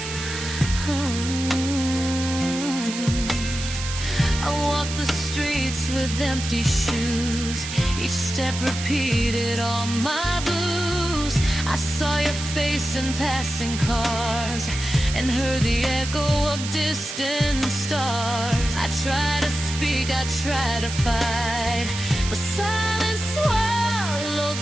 I walked the streets with empty shoes. Each step repeated all my blues. I saw your face in passing cars, and heard the echo of distant stars. I tried to speak, I tried to fight, but silence swallowed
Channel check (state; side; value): noise; right; hiss, 7 dB below the sound